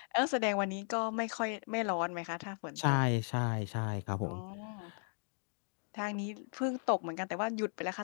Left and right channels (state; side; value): silent; right; 53 dB below the other